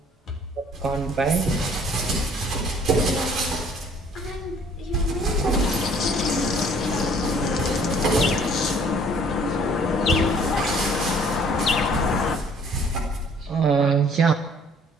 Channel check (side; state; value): both; normal; correlation 0.57